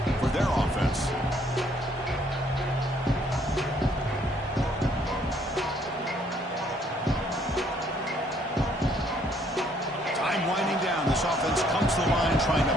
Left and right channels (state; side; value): normal; both; correlation 0.65